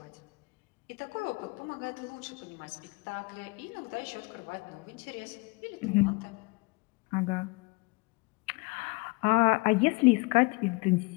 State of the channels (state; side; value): quieter; right; 27.2 dB